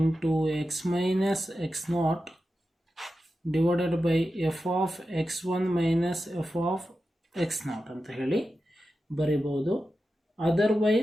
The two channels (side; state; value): both; normal; correlation 0.91